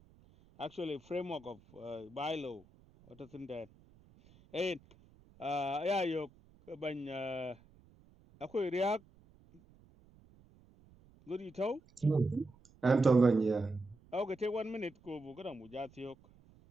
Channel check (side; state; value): right; noise; rumble, 27 dB below the sound